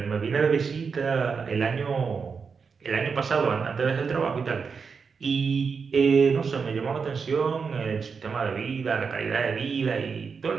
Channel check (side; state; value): left; quieter; 5.5 dB